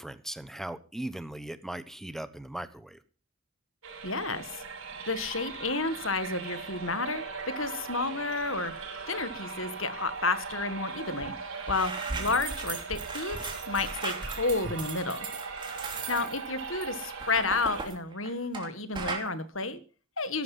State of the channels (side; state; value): both; normal; correlation -0.05